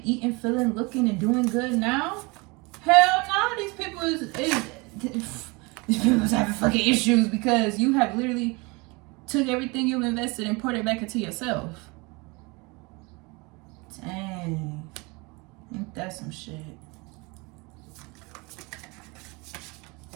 eating, feeling, looking, and doing good now? Hell no, these people these people having fucking issues because you have literally took everything you've invested and poured it back into yourself. Dang. Ain't that some shit?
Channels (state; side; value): quieter; left; 26.9 dB